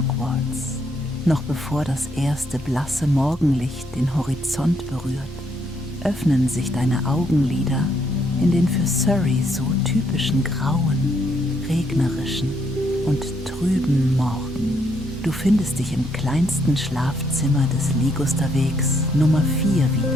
Noch bevor das erste blasse Morgenlicht den Horizont berührt, öffnen sich deine Augenlider in den für Surrey so typischen grauen, regnerischen und trüben Morgen. Du findest dich im kleinsten Schlafzimmer des Ligusterwegs Nummer 4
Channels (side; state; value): both; normal; correlation 0.72